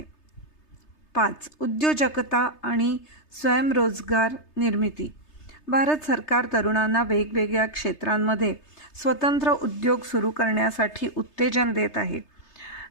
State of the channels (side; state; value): right; late; 3.3 ms